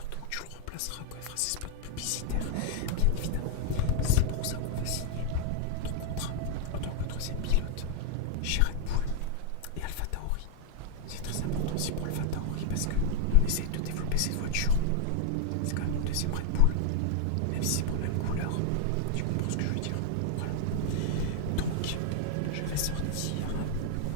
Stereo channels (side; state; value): both; different; correlation 0.00